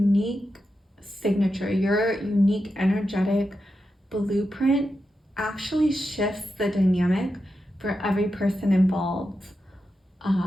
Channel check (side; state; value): both; normal; correlation 0.88